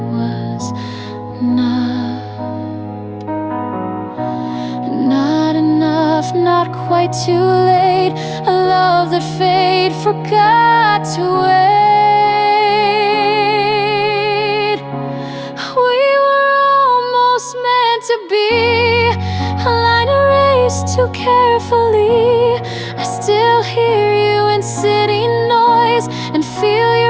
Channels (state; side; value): identical; both; correlation 1.00